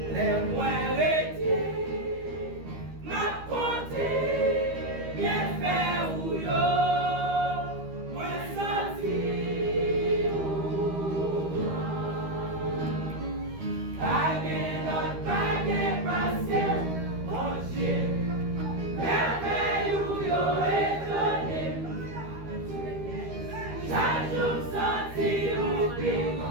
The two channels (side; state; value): left; late; 13 ms